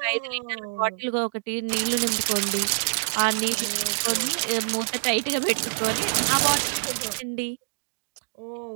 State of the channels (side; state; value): left; silent; digital silence